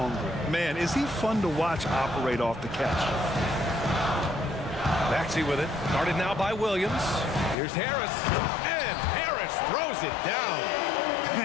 Man, is he fun to watch operate off the catch. Maxey with it. Guarded now by Williams. Here's Harris. And Harris throws it down.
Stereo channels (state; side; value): drops out; right; at 7.6 s